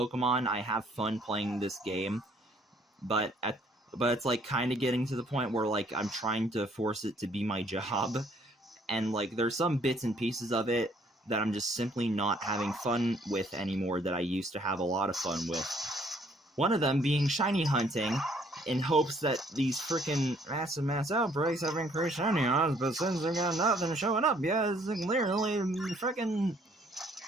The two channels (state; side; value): normal; both; correlation 0.63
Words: I have fun playing this game, but it's, like, kind of getting to the point where, like, I'm trying to force it to be my job, and, like, there's some bits and pieces of it that I'm just simply not having fun with anymore that I used to have a lot of fun with. One of them being shiny hunting, in hopes that these frickin' mass outbreaks have increased shiny odds, but since they've got nothing showing up, yeah, it's clearly frickin'...